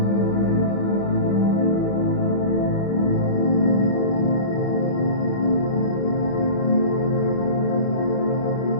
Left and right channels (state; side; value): late; right; 25 ms